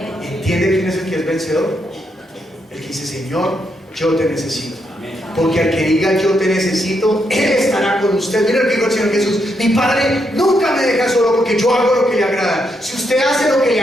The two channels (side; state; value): both; normal; correlation 0.79